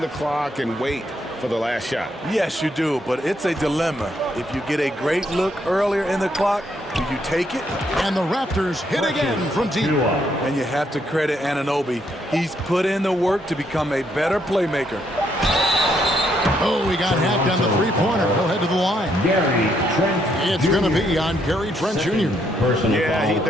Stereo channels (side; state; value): both; normal; correlation 0.74